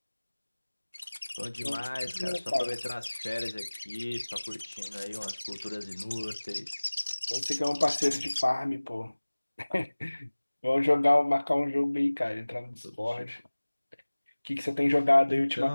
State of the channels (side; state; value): both; inverted; correlation -1.00